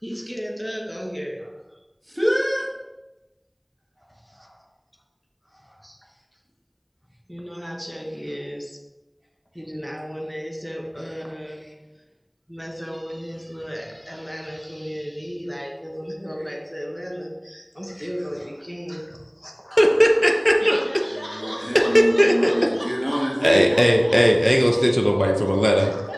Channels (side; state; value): both; identical; correlation 1.00